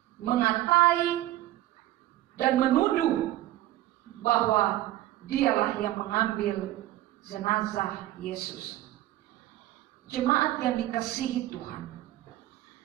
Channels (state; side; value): quieter; left; 15.2 dB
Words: mengatai dan menuduh bahwa dialah yang mengambil jenazah Yesus. Jemaat yang dikasihi Tuhan,